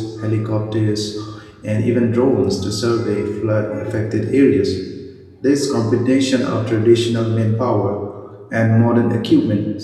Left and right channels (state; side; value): identical; both; correlation 1.00